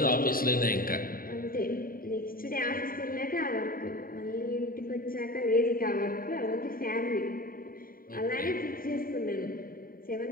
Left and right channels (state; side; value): late; right; 0.42 ms